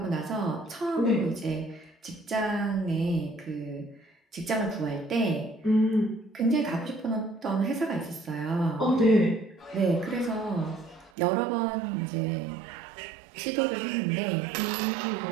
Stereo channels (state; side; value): drops out; left; at 11.1 s